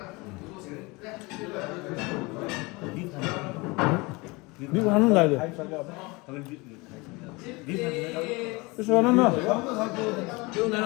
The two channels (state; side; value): quieter; right; 25.1 dB